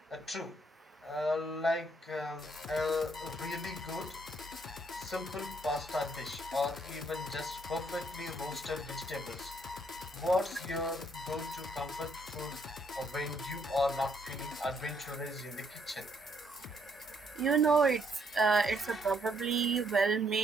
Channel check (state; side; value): normal; both; correlation 0.70